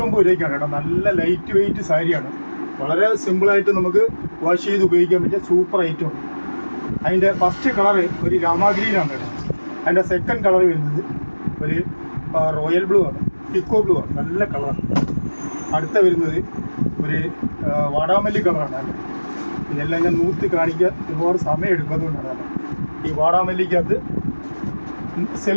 രൂപയ്ക്കാണ് കേട്ടോ. നല്ല ലൈറ്റ് വെയിറ്റ് സാരിയാണ്. വളരെ സിമ്പിളായിട്ട് നമുക്ക് വാഷ് ചെയ്ത് ഉപയോഗിക്കാൻ പറ്റിയ സൂപ്പർ ഐറ്റമാണ്. അതിൻ്റെ ഫസ്റ്റ് കളറ് ഒരു രാമാഗ്രീനാണ് കേട്ടോ. അതിൻ്റെ സെക്കൻഡ് കളർ വരുന്നത് ഒരു റോയൽ ബ്ലൂ ആണ്, പിക്കോ ബ്ലൂ ആണ്. നല്ല കളറാണ്. അടുത്ത വരുന്നത് ഒരു വാടാമല്ലി കളറാണ് അല്ലേ. ഇതെല്ലാം ഞാൻ നൂത്തി കാണിക്കാൻ ഒരുപാട് സമയം എടുക്കുന്നതുകൊണ്ടാണ്. ഈ വാടാമല്ലിക്കകത്ത്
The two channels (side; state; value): both; inverted; correlation -1.00